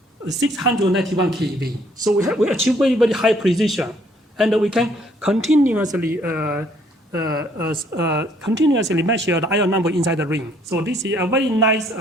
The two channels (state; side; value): normal; both; correlation 0.64